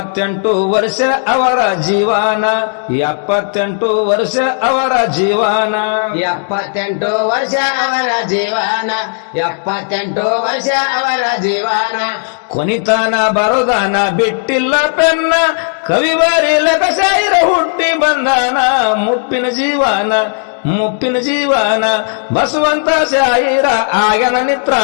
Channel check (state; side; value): silent; right; digital silence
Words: ವರ್ಷ ಅವರ ಜೀವನ 78 ವರ್ಷ ಅವರ ಜೀವನ 78 ವರ್ಷ ಅವರ ಜೀವನ 78 ವರ್ಷ ಅವರ ಜೀವನ ಕೊನಿತಾನ ಬರೋದಾನ ಬಿಟ್ಟಿಲ್ಲ ಪೆನ್ನ ಕವಿ ಬರೀಲಕ ಶಾಯಿರ ಹುಟ್ಟಿ ಬಂದಾನ ಮುಪ್ಪಿನ ಜೀವನ ಮುಪ್ಪಿನ ಜೀವನ ಬಸವಂತ ಶಾಯಿರ ಆಗನ